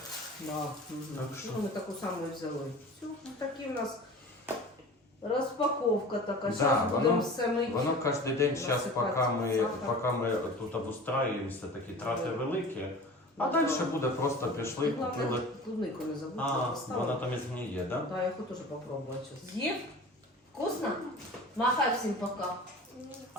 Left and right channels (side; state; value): both; normal; correlation 0.39